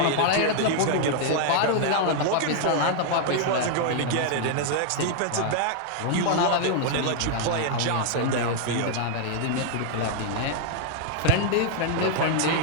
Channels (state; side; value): different; both; correlation 0.00